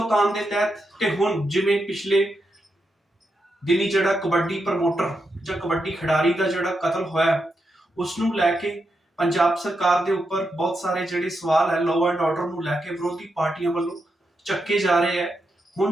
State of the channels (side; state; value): both; normal; correlation 0.84